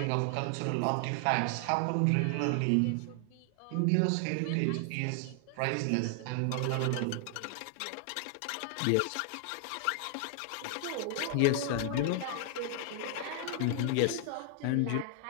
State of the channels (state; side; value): different; both; correlation 0.00